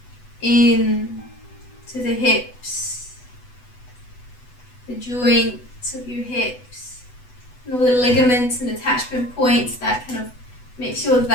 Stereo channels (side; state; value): right; late; 8.0 ms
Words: in to the hips, the joints of your hips, and all the ligaments and attachment points that kind of make sure that